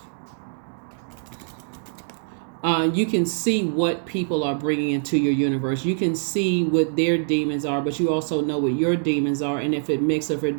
You can see what people are bringing into your universe. You can see what their demons are, but you also know what your demons are. And if it mixes, if it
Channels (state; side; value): silent; left; digital silence